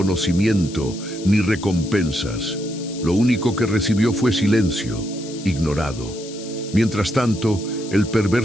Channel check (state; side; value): noise; left; hiss, 15 dB below the sound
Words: ni recompensas. Lo único que recibió fue silencio, ignorado. Mientras tanto, el